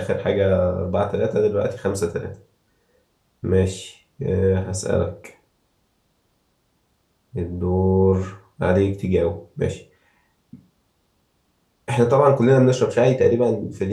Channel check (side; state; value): both; identical; correlation 1.00